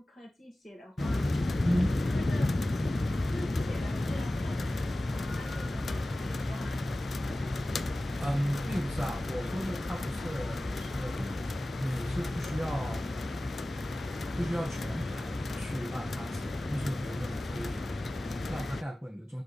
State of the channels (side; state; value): both; normal; correlation 0.96